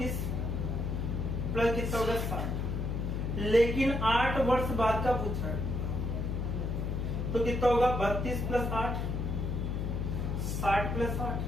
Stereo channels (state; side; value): noise; left; hum, 1 dB below the sound